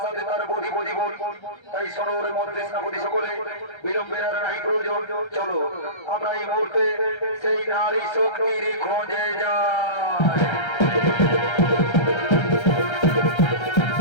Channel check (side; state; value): right; late; 1.3 ms